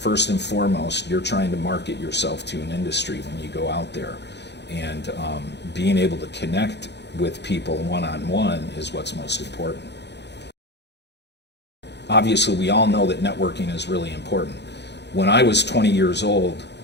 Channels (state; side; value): late; right; 0.50 ms